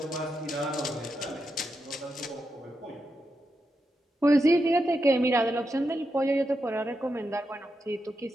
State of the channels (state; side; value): normal; both; correlation 0.86